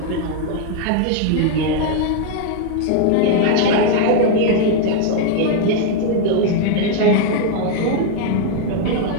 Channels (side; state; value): both; different; correlation 0.00